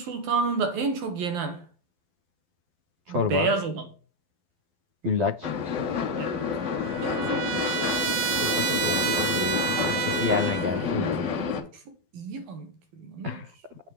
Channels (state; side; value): late; left; 12 ms